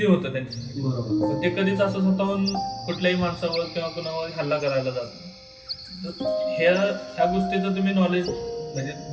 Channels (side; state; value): both; identical; correlation 1.00